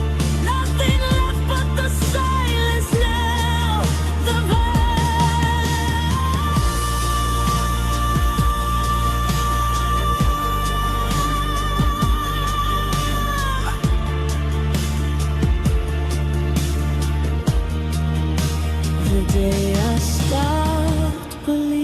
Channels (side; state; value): both; identical; correlation 1.00